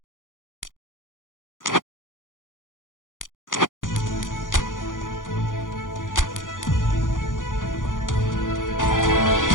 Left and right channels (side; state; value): right; late; 0.89 ms